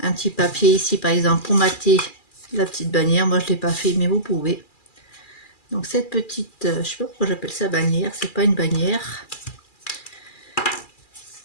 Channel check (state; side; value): late; right; 2.4 ms